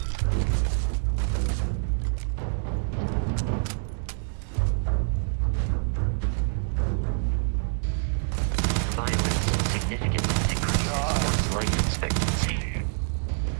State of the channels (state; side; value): silent; left; 61 dB below the other